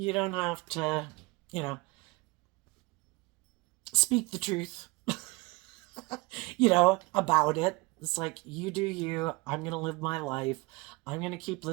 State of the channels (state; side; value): quieter; left; 24.5 dB